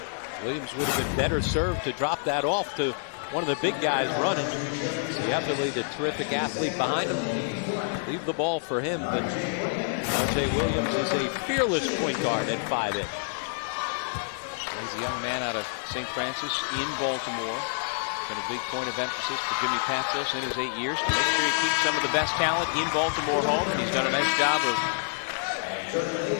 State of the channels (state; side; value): silent; right; digital silence